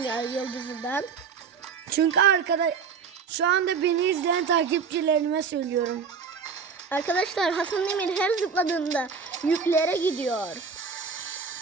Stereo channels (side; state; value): left; quieter; 5.9 dB